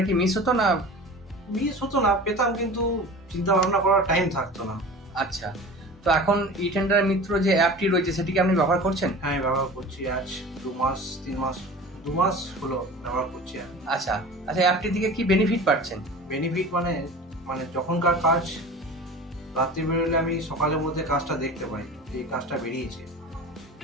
কি মিস হতো না? মিস হতো না, পেতাম, কিন্তু চিন্তা ভাবনা করার টাইম থাকতো না। আচ্ছা, তো এখন ই টেন্ডার মিত্র যে অ্যাপটি রয়েছে সেটি কি আপনি ব্যবহার করছেন? হ্যাঁ, আমি ব্যবহার করছি। আজ 2 মাস হলো ব্যবহার করছি। আচ্ছা, আচ্ছা, অ্যাপটি থেকে কি বেনিফিট পাচ্ছেন? বেনিফিট মানে মানে যখনকার কাজ রাত্রি বেরোলে আমি সকালের মধ্যে কাজটা দেখতে পাই, এই কাজটা বেরিয়েছে।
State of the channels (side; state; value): both; normal; correlation 0.37